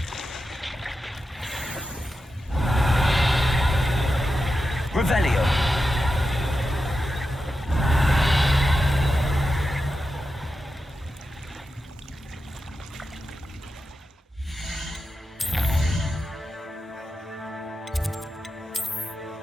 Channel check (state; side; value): normal; both; correlation 0.90